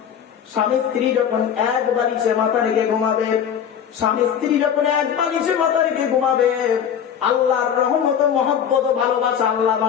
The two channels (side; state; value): right; quieter; 8.5 dB